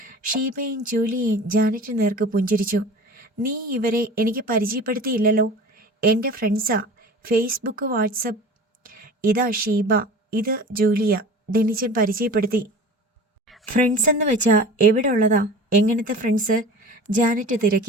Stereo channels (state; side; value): normal; both; correlation 0.38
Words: ഷീബയും ജൂലിയയും ജാനറ്റ് നേർക്ക് പുഞ്ചിരിച്ചു. നീ ഇവരെ എനിക്ക് പരിചയപ്പെടുത്തിയില്ലല്ലോ. എൻ്റെ ഫ്രണ്ട്സാ, ഫേസ്ബുക്ക്, വാട്സപ്പ്. ഇതാ ഷീബ, ഇത് ജൂലിയ, ഡെന്നിച്ചൻ പരിചയപ്പെടുത്തി. ഫ്രണ്ട്സ് എന്ന് വെച്ചാ എവിടെ ഉള്ളതാ? എങ്ങനത്തെ ഫ്രണ്ട്സ്? ജാനറ്റ്